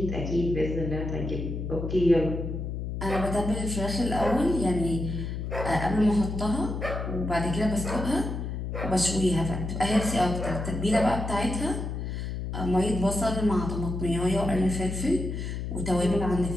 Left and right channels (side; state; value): left; noise; hum, 4 dB below the sound